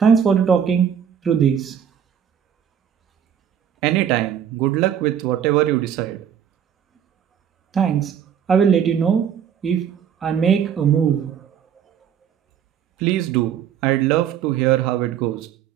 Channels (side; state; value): left; quieter; 8.6 dB